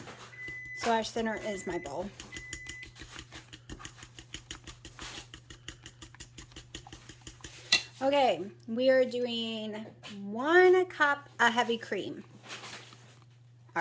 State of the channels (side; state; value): both; identical; correlation 1.00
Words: So our center is my bowl. Okay, we are doing 1 cup of heavy cream. I